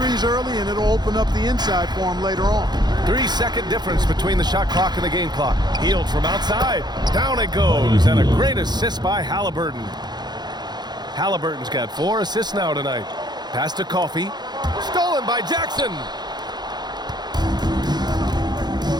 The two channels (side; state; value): left; late; 0.20 ms